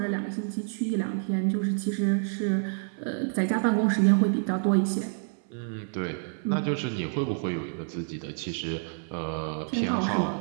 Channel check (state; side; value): silent; left; 59 dB below the other